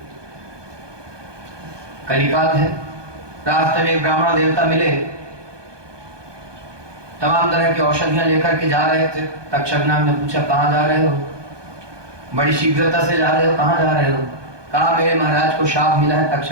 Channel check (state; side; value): late; left; 1.2 ms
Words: कलिकाल है। रास्ते में एक ब्राह्मण देवता मिले, तमाम तरह की औषधियां लेकर के जा रहे थे। तक्षक नाग ने पूछा, कहाँ जा रहे हो? बड़ी शीघ्रता से जा रहे हो, कहाँ जा रहे हो? कहा, मेरे महाराज को शाप मिला है,